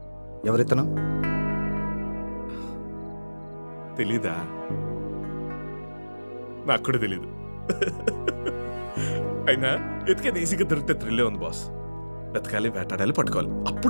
ఎవరితను? తెలీదా? నాకు కూడా తెలీదు. అయినా ఎతికేది ఈజీగా దొరికితే థ్రిల్లే ఉంది బాస్. వెతకాలి, వేటాడాలి, పట్టుకోవాలి,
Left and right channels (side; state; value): both; inverted; correlation -1.00